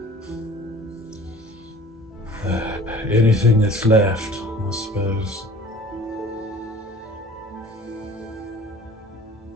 Anything that's left, I suppose.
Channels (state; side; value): normal; both; correlation 0.46